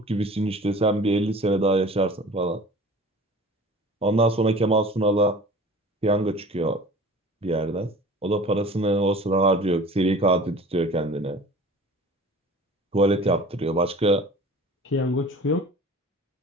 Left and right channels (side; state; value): both; normal; correlation 0.43